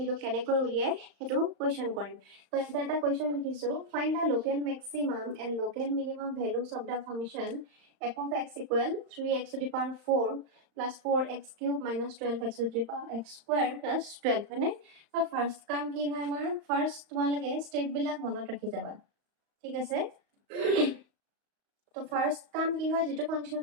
কেনেকৈ উলিয়াই সেইটো কুৱেশ্যন কৰিম। তো এটা কুৱেশ্যন লিখিছোঁ, find the local maximum and local minimum values of the function f of x equal 3x to the power 4 plus 4x cube minus 12x to the power x square plus 12 হয়নে? তো first কাম কি হয় আমাৰ first তোমালোকে ষ্টেপবিলাক মনত ৰাখি যাবা, ঠিক আছে? তো ফাৰ্ষ্ট কাম কি হয়, যিটো ফাংচন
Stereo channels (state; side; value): late; left; 35 ms